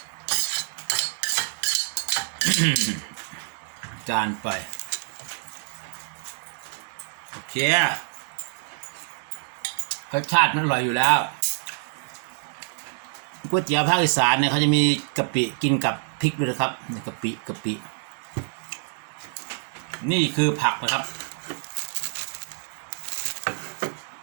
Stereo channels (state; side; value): silent; left; digital silence